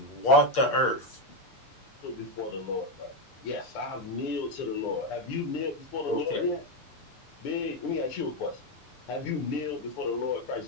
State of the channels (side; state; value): right; late; 6.9 ms